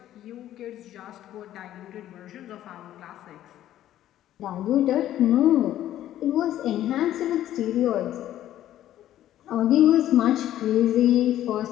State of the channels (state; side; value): quieter; right; 12.6 dB